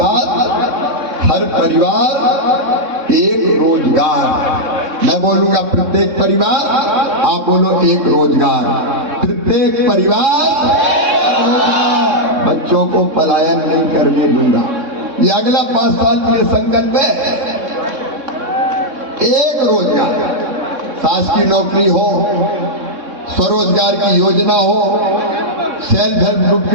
हर परिवार एक रोजगार। मैं बोलूंगा प्रत्येक परिवार, आप बोलो एक रोजगार। प्रत्येक परिवार, बच्चों को पलायन नहीं करने दूंगा। ये अगला 5 साल के संकल्प है। एक रोजगार, शासकीय नौकरी हो, स्वरोजगार की योजना हो, सेल्फ हेल्प ग्रुप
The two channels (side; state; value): left; late; 3.6 ms